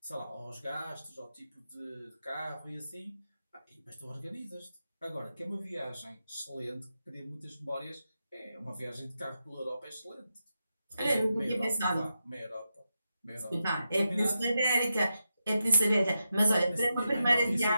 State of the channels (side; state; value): both; inverted; correlation -0.88